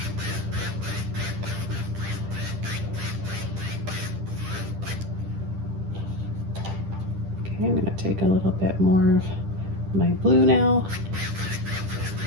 Okay, I'm going to take a little bit more of my blue now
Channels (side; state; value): left; late; 10 ms